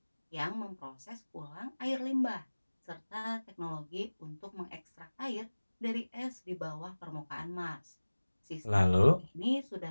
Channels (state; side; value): inverted; both; correlation -1.00